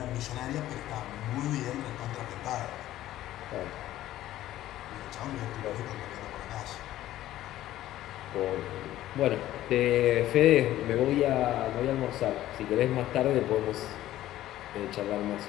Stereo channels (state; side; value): quieter; right; 14.1 dB